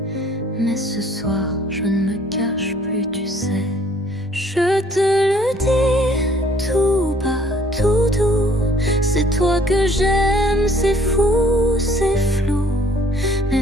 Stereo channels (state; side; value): normal; both; correlation 0.59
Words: mais ce soir je ne me cache plus, tu sais. Je te le dis tout bas, tout doux, c'est toi que j'aime, c'est fou, c'est flou, mais